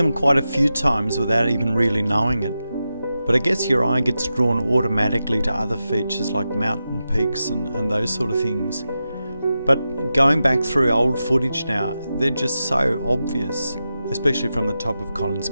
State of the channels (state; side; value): inverted; both; correlation -0.91